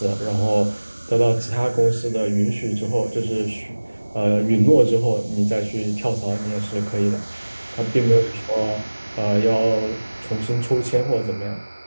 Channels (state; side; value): inverted; both; correlation -1.00